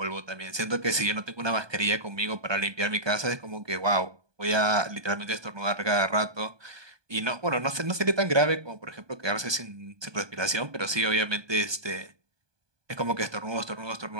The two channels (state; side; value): late; left; 1.2 ms